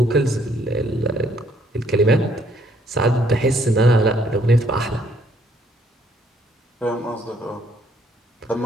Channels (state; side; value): normal; both; correlation 0.67